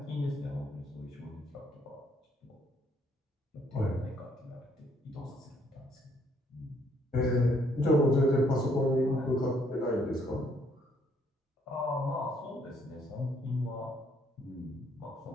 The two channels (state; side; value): normal; both; correlation 0.68